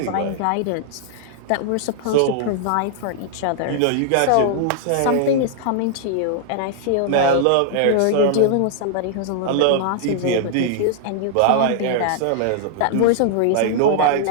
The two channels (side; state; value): both; different; correlation -0.01